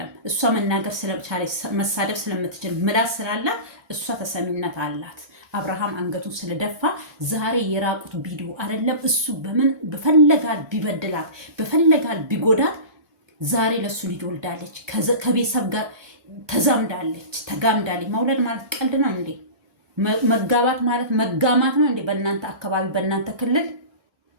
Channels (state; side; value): late; left; 1.3 ms